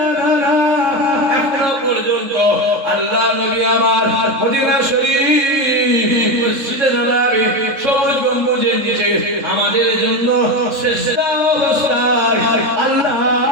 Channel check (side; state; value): left; late; 3.7 ms